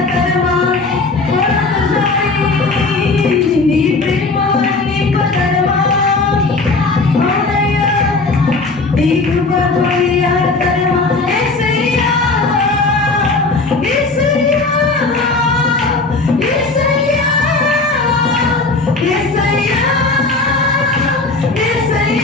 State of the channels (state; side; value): quieter; right; 3.6 dB